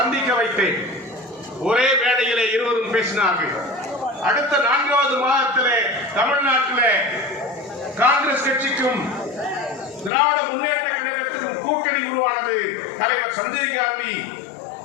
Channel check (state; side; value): drops out; right; at 10.1 s